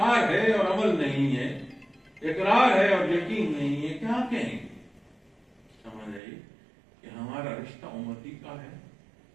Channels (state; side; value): drops out; left; at 6.2 s